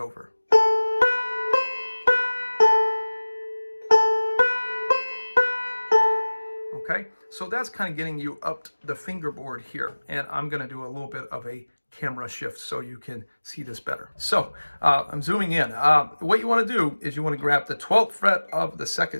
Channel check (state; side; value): inverted; both; correlation -1.00